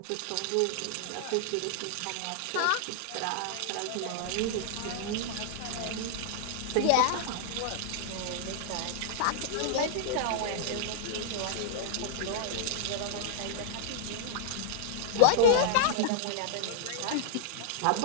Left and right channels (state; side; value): different; both; correlation -0.01